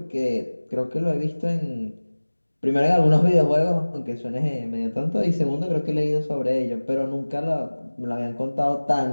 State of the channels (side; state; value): both; inverted; correlation -1.00